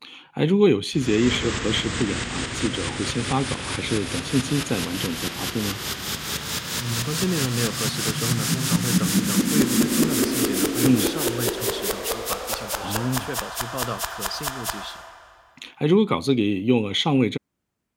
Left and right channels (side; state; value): both; identical; correlation 1.00